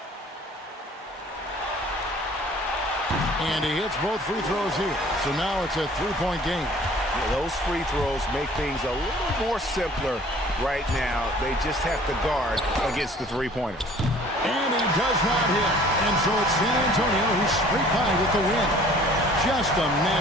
And he hits both free throws here. So now it's a 3-point game. Yeah, those free throws make things a little more simpler right now. They just have to guard against the three-pointer. And he does not hit. And so it's San Antonio who's straight by with the win. Just a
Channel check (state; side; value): normal; both; correlation 0.52